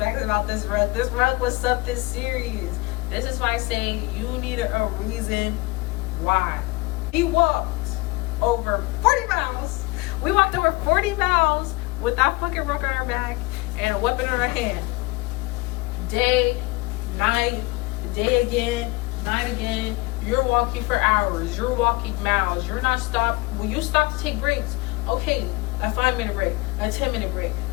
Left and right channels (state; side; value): quieter; right; 23.3 dB